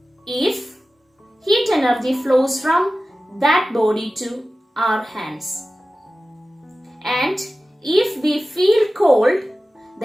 if heat energy flows from that body to our hands. And if we feel cold, the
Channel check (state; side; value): normal; both; correlation 0.95